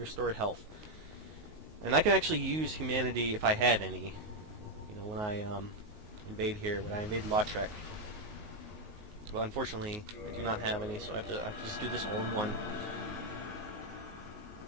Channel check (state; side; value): late; left; 19 ms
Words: health. And I can actually use Humanity if I had any. You know, when I invade here, when I invade Lautrec. Well, unfortunately, I do not have any, so I have to just do this all in one.